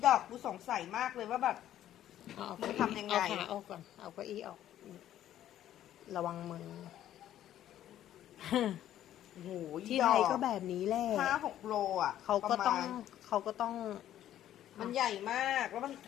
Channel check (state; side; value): quieter; right; 11.9 dB